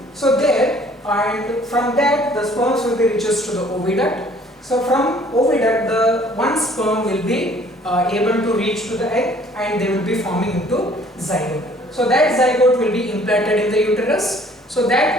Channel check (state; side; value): normal; both; correlation 0.56